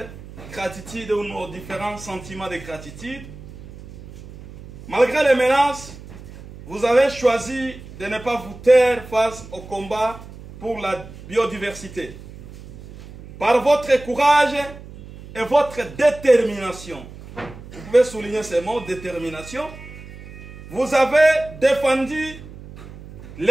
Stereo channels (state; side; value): noise; right; hum, 16 dB below the sound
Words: gratitudes ou nos différents sentiments de gratitude. Malgré les menaces, vous avez choisi de ne pas vous taire face au combat pour la biodiversité. Par votre courage et votre détermination, vous pouvez souligner ces mots, détermination, vous avez défendu